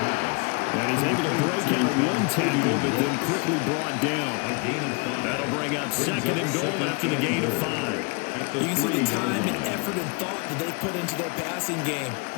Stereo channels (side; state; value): right; quieter; 31.8 dB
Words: And he's able to break out of one tackle, but then quickly brought down. That'll bring up second and goal after the gain of 5. You can see the time and effort and thought that they put into their passing game